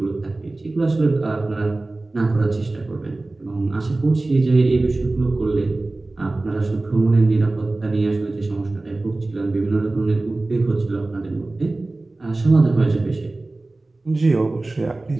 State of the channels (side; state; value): left; quieter; 3.0 dB